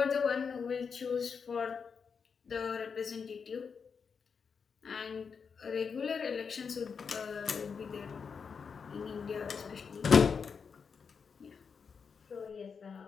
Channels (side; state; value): right; quieter; 5.9 dB